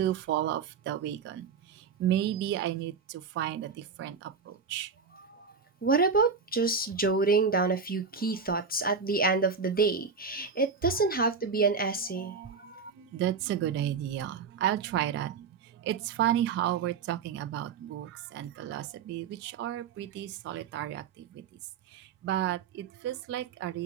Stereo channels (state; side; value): quieter; left; 5.6 dB